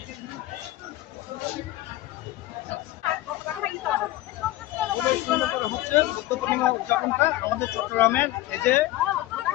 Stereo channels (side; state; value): right; quieter; 16.6 dB